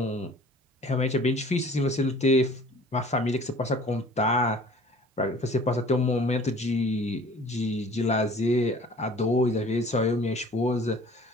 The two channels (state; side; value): normal; both; correlation 0.49